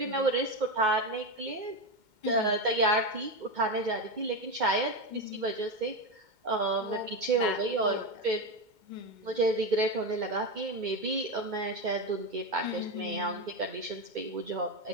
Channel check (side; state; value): left; late; 2.2 ms